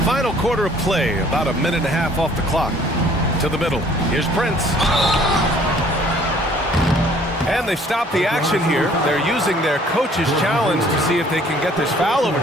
Final quarter of play, about a minute and a half off the clock. To the middle. Here's Prince. And they've stopped the action here. They're using their coach's challenge to see if they can get this foul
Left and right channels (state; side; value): normal; both; correlation 0.57